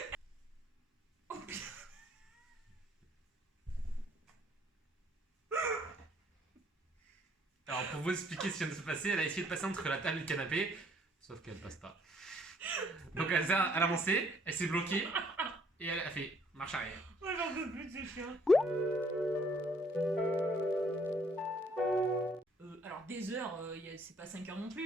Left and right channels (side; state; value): both; normal; correlation 0.63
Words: Oh putain. Alors pour vous expliquer ce qui vient de se passer, elle a essayé de passer entre la table et le canapé, sauf qu'elle passe pas. Donc elle a avancé, elle s'est bloquée et elle a fait marche arrière. Moi, j'en peux plus de ce chien. Alors, des heures, c'est pas 5 heures non